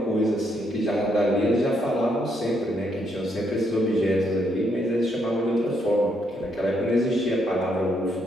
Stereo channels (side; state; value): both; normal; correlation 0.75